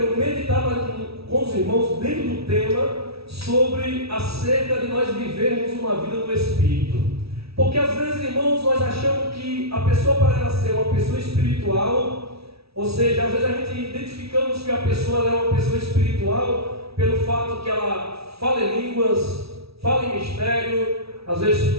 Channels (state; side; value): late; left; 0.76 ms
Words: meditar com os irmãos dentro do tema sobre acerca de nós vivermos uma vida no Espírito. Porque às vezes, irmãos, nós achamos que a pessoa, para ela ser uma pessoa espiritual, ou seja, às vezes a gente identificamos que a pessoa é uma pessoa espiritual pelo fato que ela fala em línguas, fala em mistério, às vezes